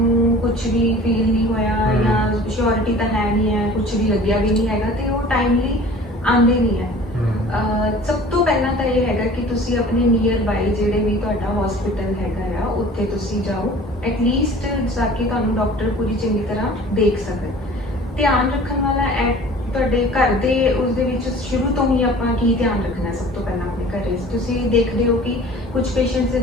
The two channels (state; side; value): normal; both; correlation 0.45